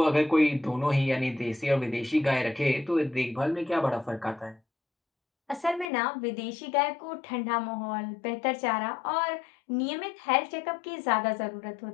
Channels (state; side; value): drops out; right; at 5.9 s